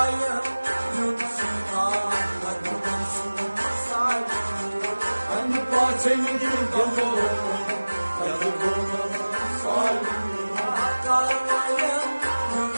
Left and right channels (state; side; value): inverted; both; correlation -1.00